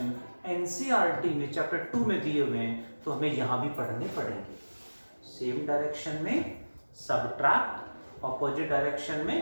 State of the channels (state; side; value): inverted; both; correlation -1.00